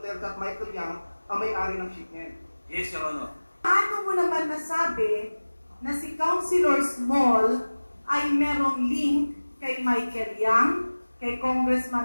at Michael Yang ang may-ari ng shipment. Yes, Your Honor. Paano mo naman nasabi na si Councilor Small ay merong link kay Michael Yang, kay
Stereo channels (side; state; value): both; inverted; correlation -1.00